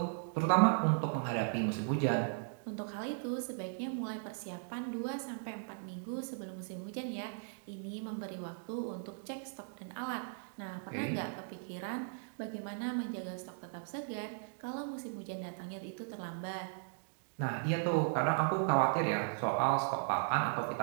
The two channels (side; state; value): left; silent; digital silence